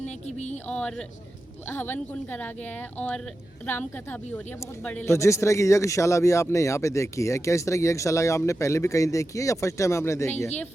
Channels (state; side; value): noise; right; hum, 29 dB below the sound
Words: की भी, और हवन कुंड करा गया है और राम कथा भी हो रही है बहुत बड़े। तो जिस तरह की यज्ञशाला भी आपने यहाँ पे देखी है, क्या इस तरह की यज्ञशाला आपने पहले भी कहीं देखी है या फर्स्ट टाइम आपने देखी है? नहीं, ये